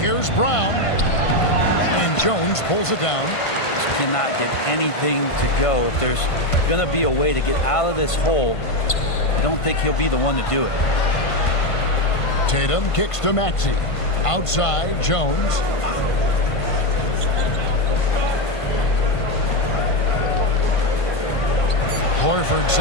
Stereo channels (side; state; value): right; late; 1.5 ms